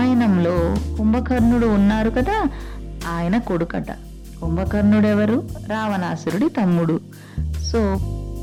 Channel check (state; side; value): identical; both; correlation 1.00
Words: కుంభకర్ణుడు ఉన్నారు కదా, ఆయన కొడుకట. కుంభకర్ణుడు ఎవరు? రావణాసురుడి తమ్ముడు. సో